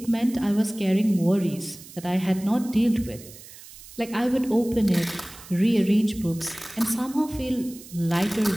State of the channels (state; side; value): noise; right; hiss, 18 dB below the sound